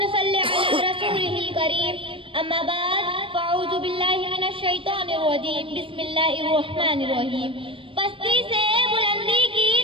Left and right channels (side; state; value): left; late; 0.25 ms